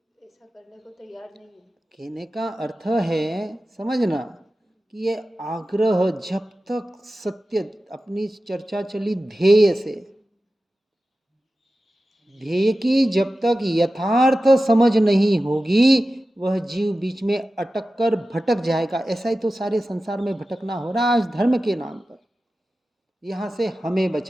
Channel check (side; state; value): both; normal; correlation 0.94